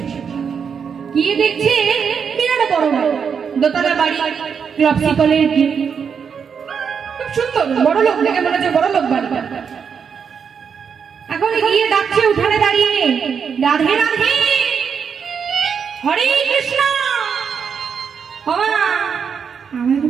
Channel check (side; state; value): left; quieter; 6.7 dB